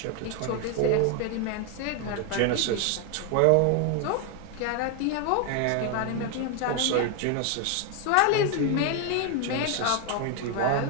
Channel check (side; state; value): both; different; correlation 0.01